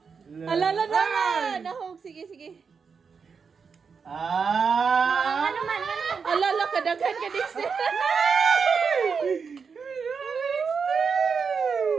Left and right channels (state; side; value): quieter; left; 5.7 dB